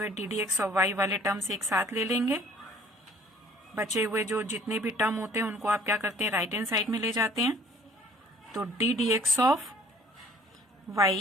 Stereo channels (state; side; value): normal; both; correlation 0.54